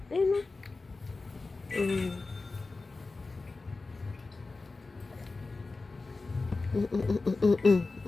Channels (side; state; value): right; quieter; 3.7 dB